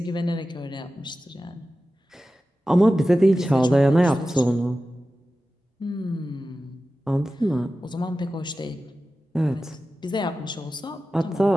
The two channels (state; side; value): normal; both; correlation 0.94